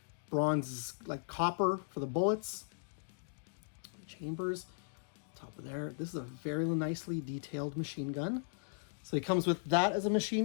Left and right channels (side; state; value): right; silent; digital silence